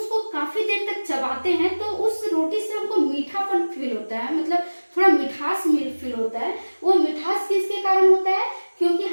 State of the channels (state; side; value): inverted; both; correlation -1.00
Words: काफी देर तक चबाते हैं तो उस रोटी से हमको मीठापन फील होता है, मतलब थोड़ा मिठास फील होता है। वो मिठास किसके कारण होता है? क्योंकि